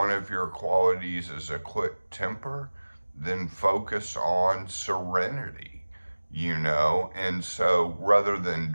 of your qualities is a quick temper, then focus on serenity, And so rather than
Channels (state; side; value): inverted; both; correlation -1.00